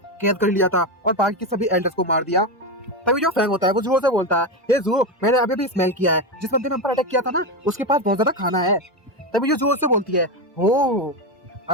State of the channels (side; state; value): both; normal; correlation 0.14